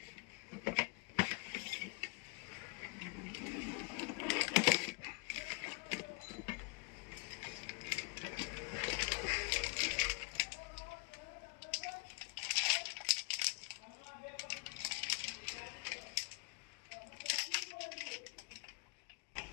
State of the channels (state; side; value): quieter; right; 29.7 dB